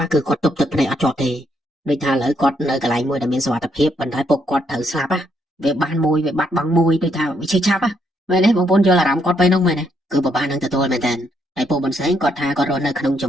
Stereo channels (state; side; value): normal; both; correlation 0.74